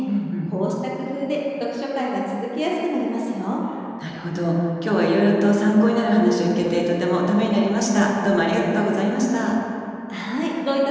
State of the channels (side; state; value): both; identical; correlation 1.00